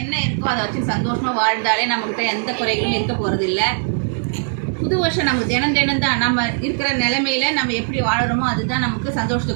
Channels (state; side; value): silent; left; digital silence